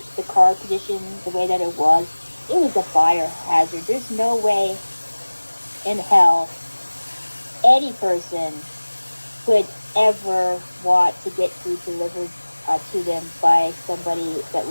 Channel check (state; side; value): inverted; both; correlation -1.00